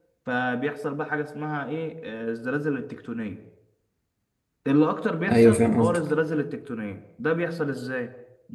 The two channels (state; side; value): identical; both; correlation 1.00